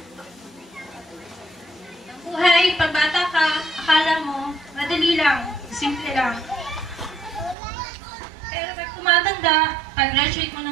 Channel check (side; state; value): left; drops out; at 7.6 s